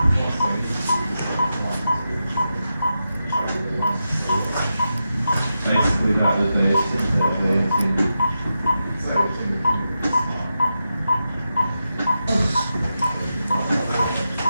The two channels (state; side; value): inverted; both; correlation -0.89